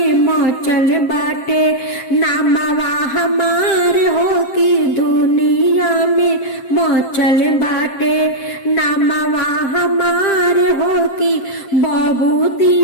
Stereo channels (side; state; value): right; late; 7.6 ms